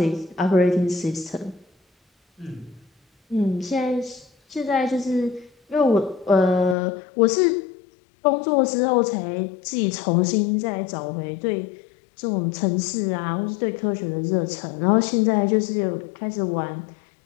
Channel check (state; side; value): drops out; right; at 6.8 s